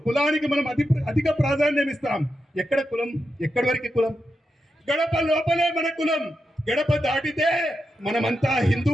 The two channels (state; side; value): normal; both; correlation 0.87